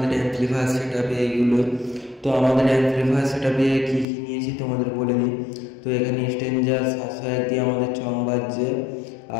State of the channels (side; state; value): right; drops out; at 4.0 s